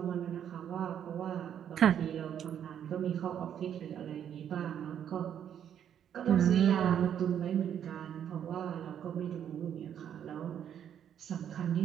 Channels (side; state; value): left; quieter; 9.3 dB